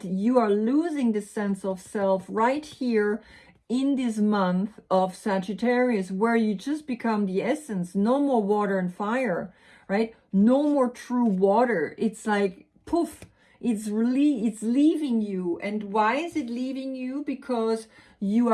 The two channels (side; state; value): both; identical; correlation 1.00